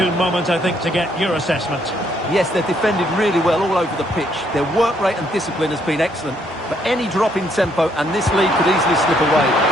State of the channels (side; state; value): both; normal; correlation 0.70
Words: moment, I think, to get your assessment. Yes, they've defended really well all over the pitch. Their work rate and discipline has been excellent. But any drop in tempo and this lead could easily slip away.